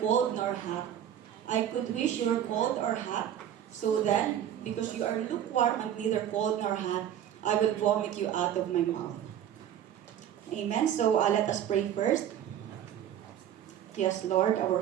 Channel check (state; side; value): quieter; left; 10.3 dB